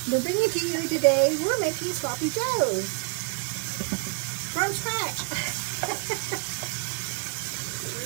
We're bringing to you today, we're making sloppy joes from scratch.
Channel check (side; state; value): left; quieter; 37.3 dB